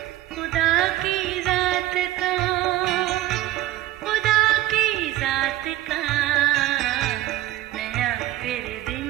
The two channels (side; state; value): left; quieter; 14.8 dB